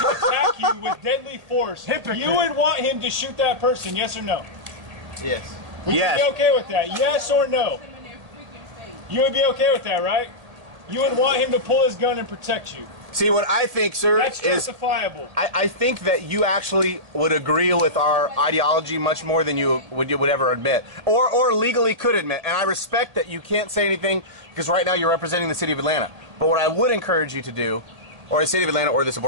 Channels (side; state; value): left; late; 1.8 ms